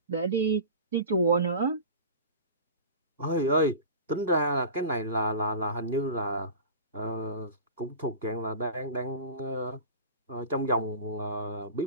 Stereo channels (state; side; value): inverted; both; correlation -0.34